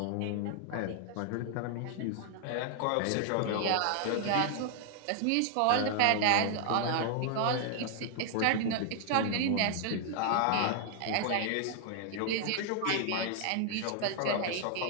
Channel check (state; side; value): different; both; correlation 0.00